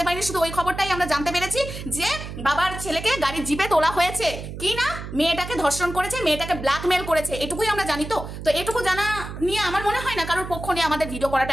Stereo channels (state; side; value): noise; right; hum, 9 dB below the sound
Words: পারিনি, শুধু ওই খবরটাই আমরা জানতে পেরেছি যে বাবার ছেলেকে গাড়ির জিপে তোলা হয়েছে, কি না মেয়েটাকে ধর্ষণ করেছে, মেয়েটাকে ব্ল্যাকমেল করেছে, এটুকুই আমরা জানি। তো এটুকু জানা নিয়ে আমার মনে হয় না কারোর পক্ষ নিয়ে আমাদের ভিডিও করাটা